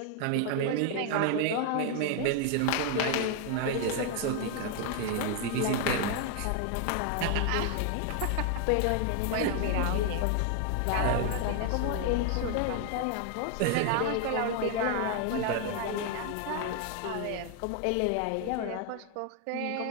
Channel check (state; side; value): different; both; correlation 0.00